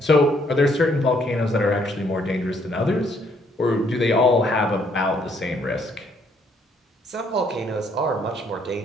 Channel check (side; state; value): both; normal; correlation 0.68